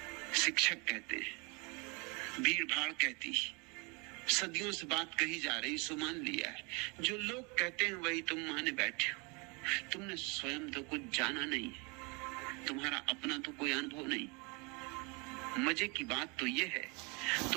शिक्षक कहते हैं, भीड़ भाड़ कहती है, सदियों से बात कही जा रही, सो मान लिया है। जो लोग कहते हैं वही तुम माने बैठे हो। तुमने स्वयं तो कुछ जाना नहीं है, तुम्हारा अपना तो कोई अनुभव नहीं। मजे की बात तो यह है,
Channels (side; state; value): left; quieter; 30.3 dB